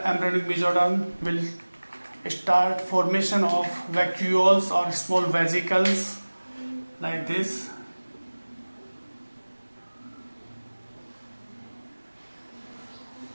embryonic mesoderm will start formation of vacuoles or small vesicles like this.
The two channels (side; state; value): both; inverted; correlation -1.00